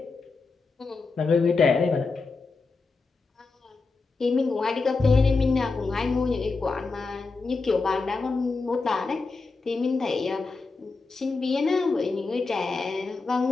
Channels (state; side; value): quieter; right; 4.0 dB